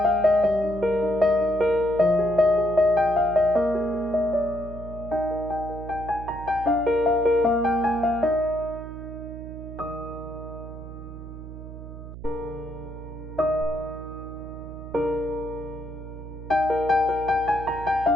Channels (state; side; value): noise; right; hum, 12 dB below the sound